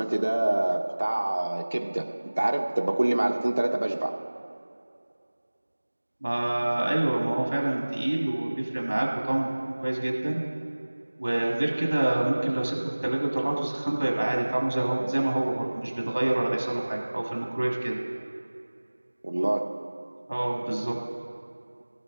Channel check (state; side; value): inverted; both; correlation -1.00